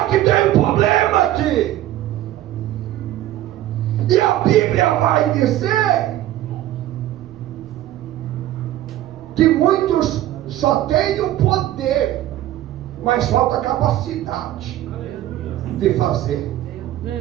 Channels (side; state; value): left; quieter; 13.7 dB